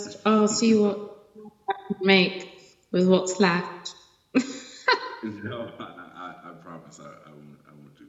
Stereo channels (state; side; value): identical; both; correlation 1.00